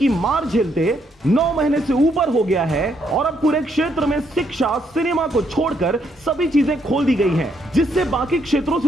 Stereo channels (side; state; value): both; normal; correlation 0.74